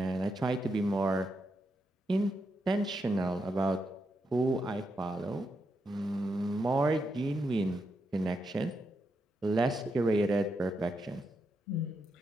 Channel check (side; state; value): both; normal; correlation 0.83